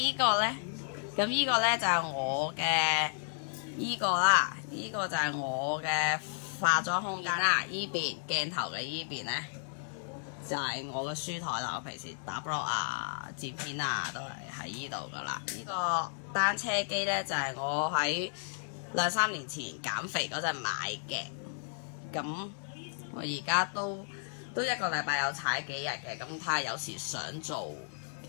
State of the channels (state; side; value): silent; right; 56 dB below the other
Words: 個咧，咁依個咧就係我嘅依個啦，依個就係我嘅化妝空間啦。依邊鏡頭嘅依邊咧就係我嘅書台啦，我平時打 blog 啊、剪片啊都係喺依度噶啦。呢個單車機咧就係我喺2-3年前減肥嗰陣買嘅，咁我而家都一個禮拜有踩幾日嘅，咁睇下有時想做